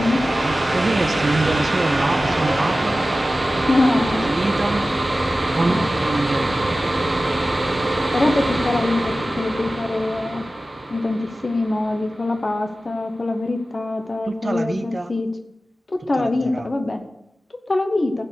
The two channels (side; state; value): both; normal; correlation 0.95